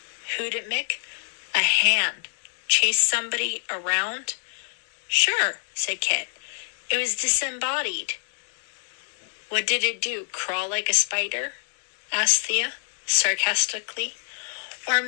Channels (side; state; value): right; silent; digital silence